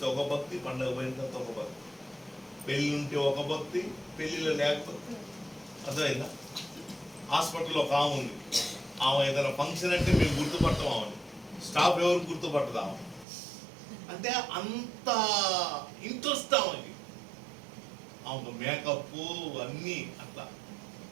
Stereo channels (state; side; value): drops out; left; at 13.2 s